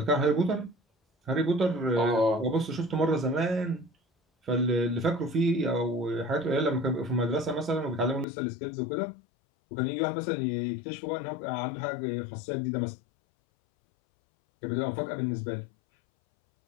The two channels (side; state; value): right; drops out; at 8.2 s